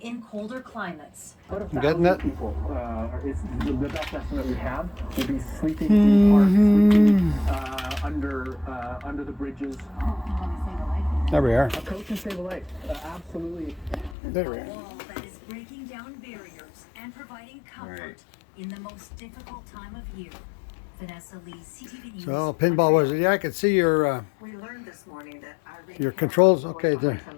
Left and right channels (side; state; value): right; drops out; at 14.2 s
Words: in colder climates. About You getting it? people is the best estimate we have will be sleeping in parks, sleeping under the bridges. There we are. A coat can save a life. Absolutely. There we A are. wall that is breaking down barriers and providing comfort Right. in the most difficult time of year. Vanessa Lee, CTV News. So pinball was it? Yeah, I could see your We learned this morning that Irene your Cara controls. was Okay, behind there. some